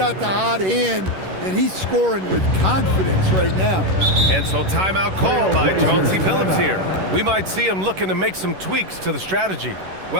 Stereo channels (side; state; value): left; late; 11 ms